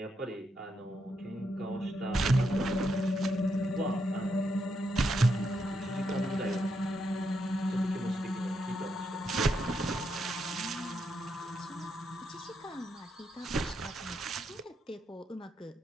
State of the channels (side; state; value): both; normal; correlation 0.81